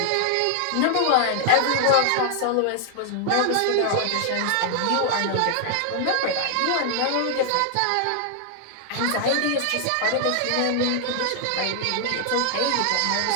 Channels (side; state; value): both; different; correlation 0.00